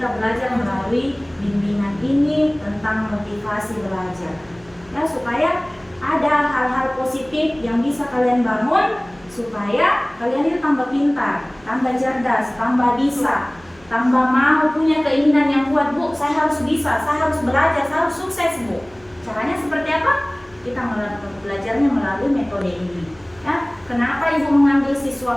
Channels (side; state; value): right; noise; hum, 27 dB below the sound